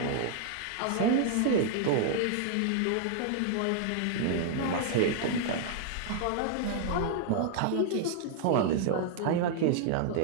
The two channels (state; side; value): different; both; correlation 0.00